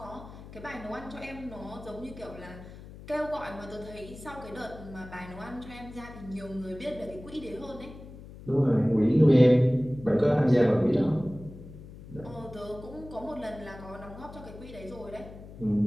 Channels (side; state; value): left; noise; hum, 16 dB below the sound